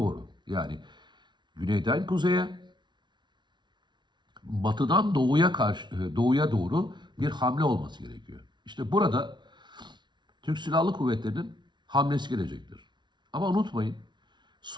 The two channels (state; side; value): late; left; 0.22 ms